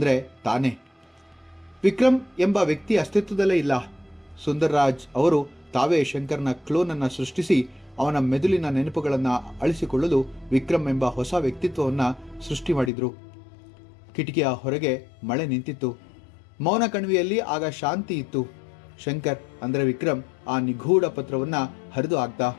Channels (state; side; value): drops out; right; at 12.9 s